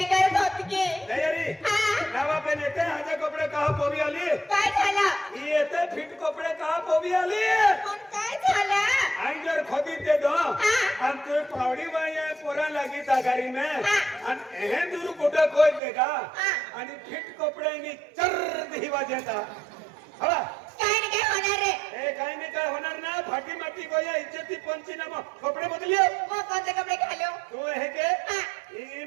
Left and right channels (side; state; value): left; drops out; at 15.8 s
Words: करत होती की तयारी नावा पे नेते हाजे कपडे कहा पोवी आली काय झालं येते फिट कपडे कहा पोवी आली पण काय झालं अंजर खोदी दे दो हम तो पावडी वाया पोरा लगी तागारी में अन हे दूर कुठे कोई देगा आणि फिट कपडे नी चर दी वाजेता हवा काय नाही काय होणार रे ए काय नाही काय होणार ना फाटी माटी गोया इज्जती पंचनामा कपडे बदलियो मग कोणते कपडे घालू तू हे के ई